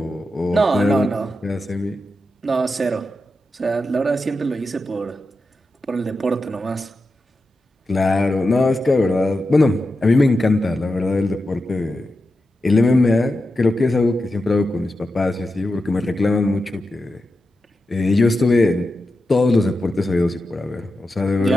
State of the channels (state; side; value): normal; both; correlation 0.90